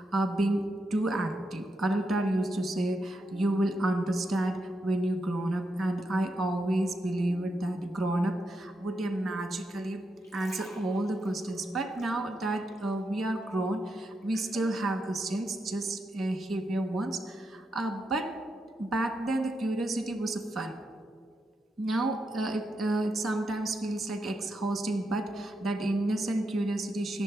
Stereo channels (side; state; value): both; normal; correlation 0.84